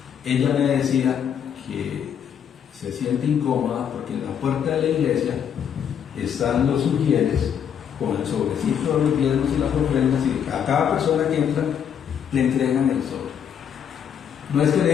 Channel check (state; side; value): quieter; right; 8.4 dB